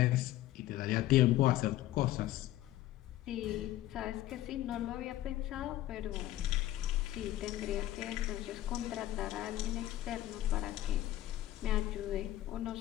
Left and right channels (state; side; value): quieter; right; 14.6 dB